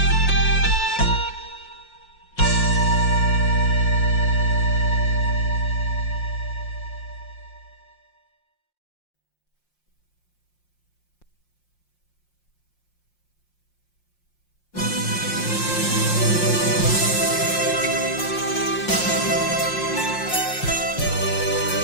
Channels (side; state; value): right; late; 5.6 ms